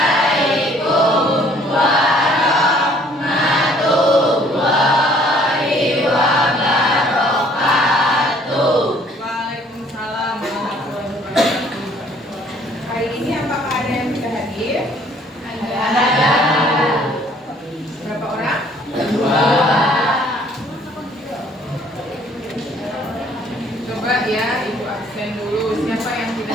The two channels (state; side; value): normal; both; correlation 0.59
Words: Hari ini apakah ada yang bisa hadir? Ada. Berapa orang? 2. Coba ya, Ibu absen dulu. Siapa yang